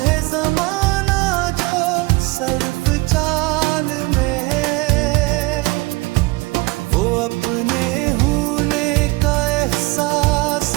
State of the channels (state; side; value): quieter; left; 23.5 dB